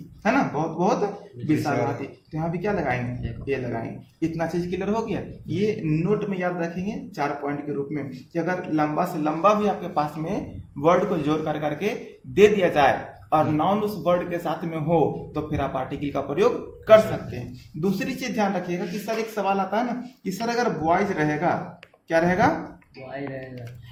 है ना, बहुत बहुत विशाल हाथी। तो यहाँ भी क्या लगाएंगे? ये लगाएंगे। इतना चीज क्लियर हो गया। ये नोट में याद रखेंगे 4 पॉइंट के रूप में, कि अगर लंबा से लंबा भी आपके पास में वर्ड को जोड़ कर करके दे दिया जाए और नाउन उस वर्ड के साथ में हो, तो फिर आप आर्टिकल का प्रयोग कर सकते हैं। दूसरी चीज ध्यान रखिएगा कि सर एक सवाल आता है ना कि सर अगर बॉयज रहेगा, क्या रहेगा?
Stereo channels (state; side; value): identical; both; correlation 1.00